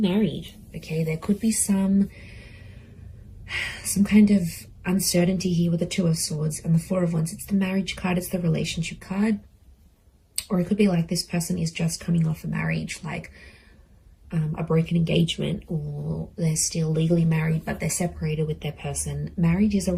Okay, there could be some kind of uncertainty here with the Two of Swords and the Four of Wands. It's the marriage card. It's the relationship card. Or it could be like this person is just coming off a marriage, like a broken engagement, or they're still legally married but they're separated with their person. Marriage is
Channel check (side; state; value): both; identical; correlation 1.00